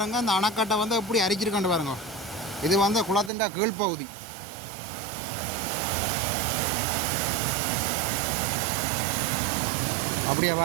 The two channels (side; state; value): left; drops out; at 3.3 s